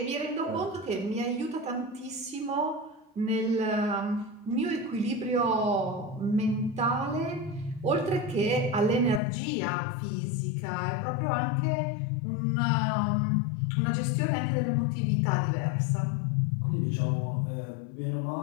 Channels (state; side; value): drops out; right; at 9.2 s